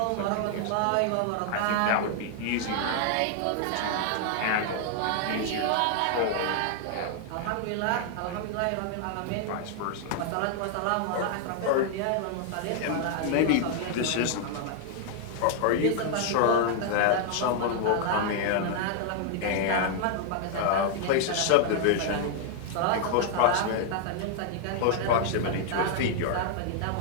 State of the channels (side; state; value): both; different; correlation 0.00